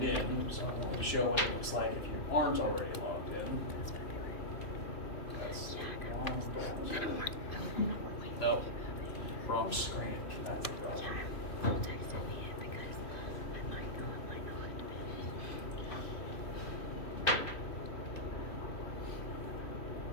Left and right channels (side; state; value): right; late; 3.0 ms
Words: in, so I wanted to show what it looks like if you aren't already logged in. That's the wrong browser. No, wrong screen. That's the browser.